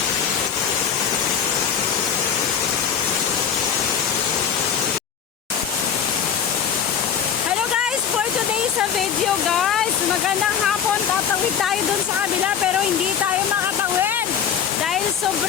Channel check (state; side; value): quieter; right; 7.9 dB